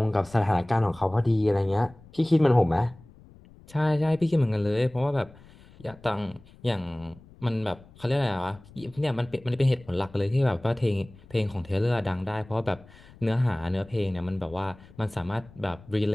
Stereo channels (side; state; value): left; noise; rumble, 23 dB below the sound